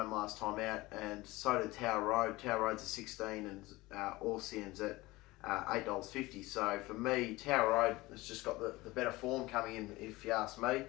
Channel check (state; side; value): quieter; right; 20.3 dB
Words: last time out, and so did Tower Road. Tower Road's at 16 and Orsian's at $8.50. So for me, Tower Road has just got the better form coming in, if you ask me.